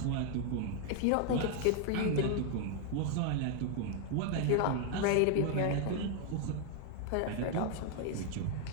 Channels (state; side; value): different; both; correlation 0.00